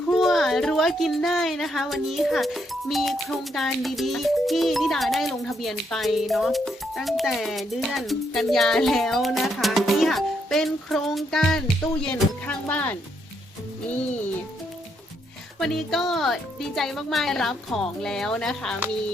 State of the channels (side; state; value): both; normal; correlation 0.76